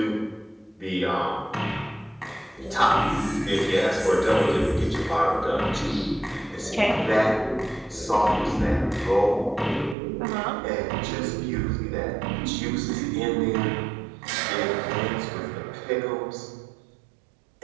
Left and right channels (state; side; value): drops out; left; at 10.0 s